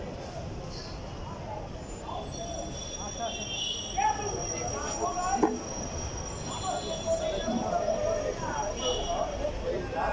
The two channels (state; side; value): identical; both; correlation 1.00